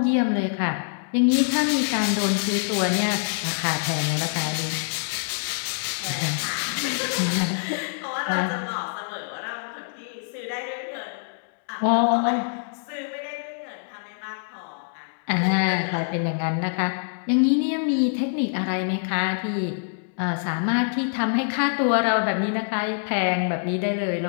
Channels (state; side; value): silent; right; digital silence